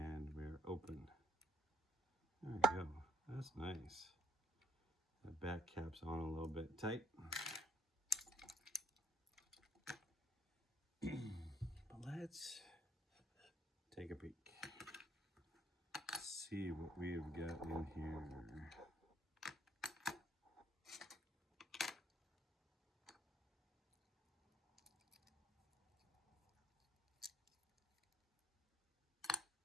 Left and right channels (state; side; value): normal; both; correlation 0.61